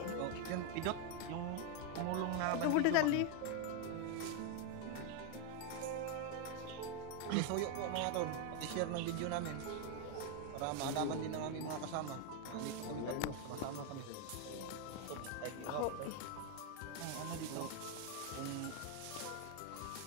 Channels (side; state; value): both; different; correlation 0.01